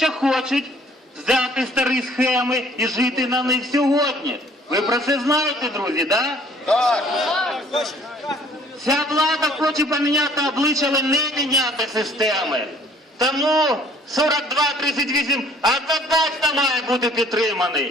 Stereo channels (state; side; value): normal; both; correlation 0.57